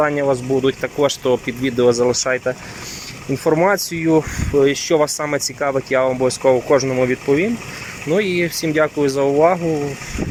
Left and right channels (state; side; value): identical; both; correlation 1.00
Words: у вас будуть. Також то під відео залишайте інформацію, що вас саме цікавить, я вам обов'язково кожному відповім. І всім дякую за увагу.